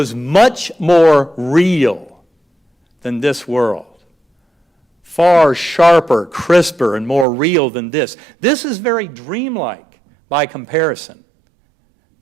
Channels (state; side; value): drops out; left; at 7.2 s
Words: much more real than this world. Far sharper, crisper, and more real than this. This is very dreamlike by comparison.